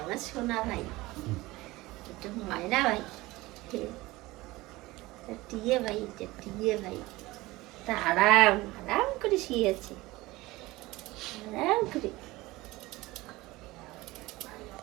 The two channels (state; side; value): quieter; left; 19.9 dB